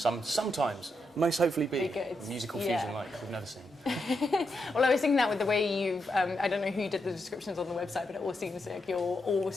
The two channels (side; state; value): both; normal; correlation 0.83